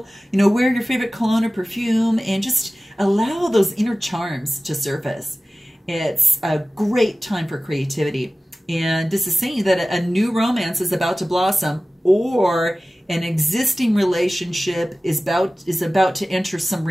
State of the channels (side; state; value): both; normal; correlation 0.96